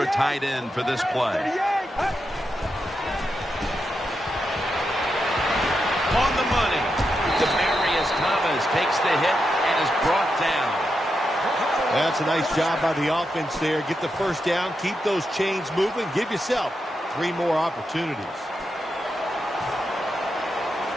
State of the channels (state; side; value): normal; both; correlation 0.86